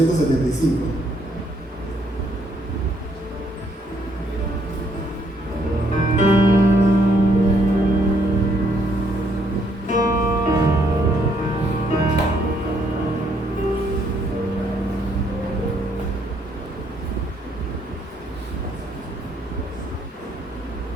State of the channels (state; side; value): normal; both; correlation 0.70